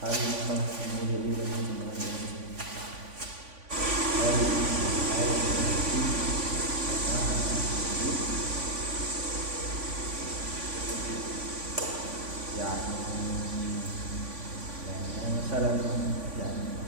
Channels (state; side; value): late; left; 3.5 ms